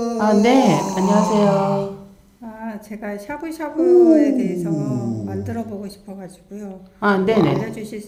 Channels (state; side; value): identical; both; correlation 1.00